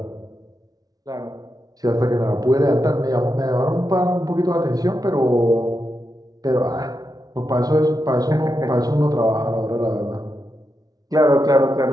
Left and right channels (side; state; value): left; late; 0.18 ms